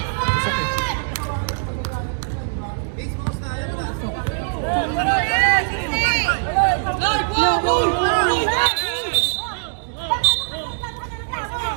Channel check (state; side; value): silent; left; digital silence